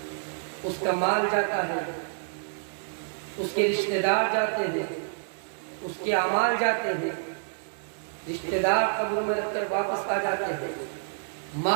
اس کا مال جاتا ہے، اس کے رشتہ دار جاتے ہیں، اس کے اعمال جاتے ہیں، رشتہ دار قبر میں رکھ کر واپس آ جاتے ہیں،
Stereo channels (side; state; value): left; silent; 59 dB below the other